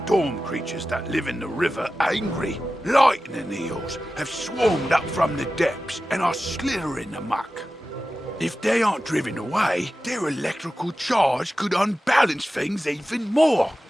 creatures that live in the river angry. Lightning eels have swarmed up from the depths and are slithering amok. If they aren't driven away, their electrical charge could unbalance things even more.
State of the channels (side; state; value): both; normal; correlation 0.94